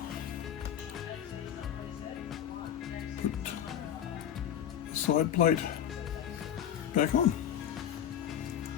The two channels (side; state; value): right; quieter; 9.9 dB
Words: put the side plate back on.